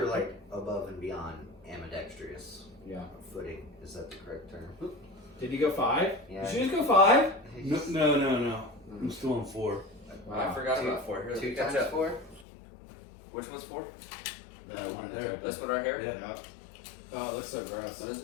like above and beyond ambidextrous. Yeah. Footing. Is that the correct term? Did you go 5? Yeah. Did you just go 5? No. I'm still on 4. I forgot about 4. Here, let me Two catch times up. 4? Which one's 4? No, Right there. This one right here? Yeah. Oh, it looks so gross. What is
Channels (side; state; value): right; drops out; at 12.5 s